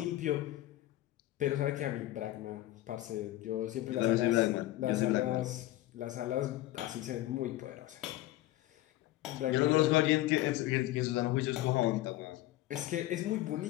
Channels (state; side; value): quieter; right; 16.0 dB